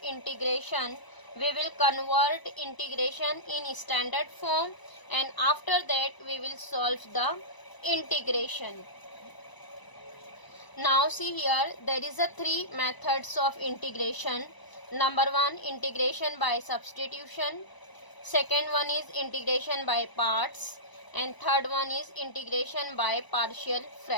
we will convert integration in standard form, and after that we will solve the integration. Now see here, there is a three methods of integration. Number one, integration by substitution. Second one is integration by parts, and third one is integration by partial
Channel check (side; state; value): right; late; 1.0 ms